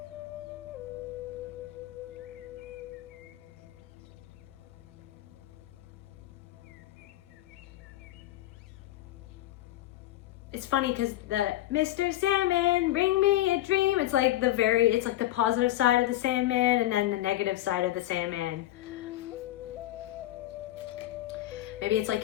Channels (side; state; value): right; quieter; 15.0 dB